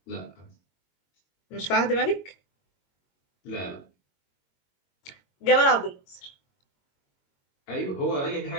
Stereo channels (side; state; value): right; late; 22 ms